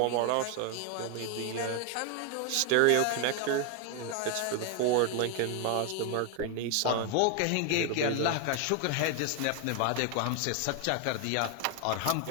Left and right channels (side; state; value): both; different; correlation 0.01